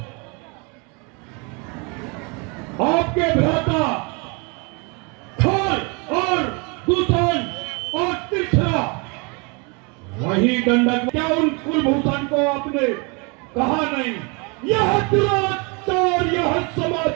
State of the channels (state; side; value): quieter; left; 31.3 dB